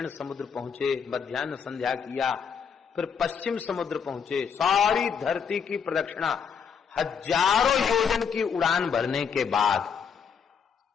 समुद्र पहुंचे, मध्याह्न संध्या किया, फिर पश्चिम समुद्र पहुंचे, सारी धरती की प्रदक्षिणा हजारों योजन की उड़ान भरने के बाद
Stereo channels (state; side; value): quieter; right; 6.8 dB